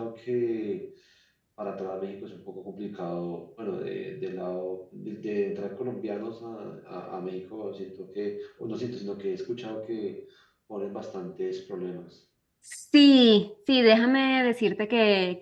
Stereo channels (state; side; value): identical; both; correlation 1.00